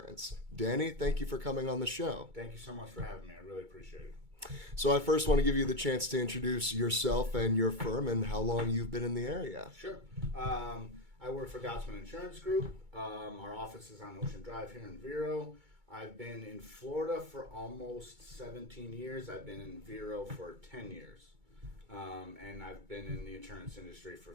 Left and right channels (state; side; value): late; left; 2.2 ms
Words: Danny, thank you for coming on the show. Thank you so much for having me. I really appreciate it. So I first want to give you the chance to introduce yourself and your firm and how long you've been in the area. Sure. I work for Gottzmann Insurance Group. Our office is on Ocean Drive here in Vero. I've been in Florida for almost 17 years. I've been in Vero for 10 years. And I've been in the insurance industry for